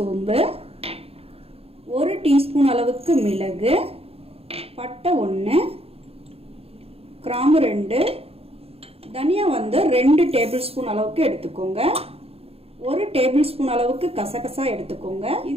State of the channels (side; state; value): left; late; 0.29 ms